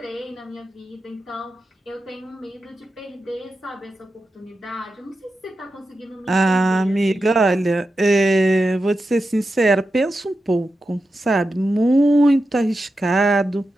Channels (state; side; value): normal; both; correlation 0.90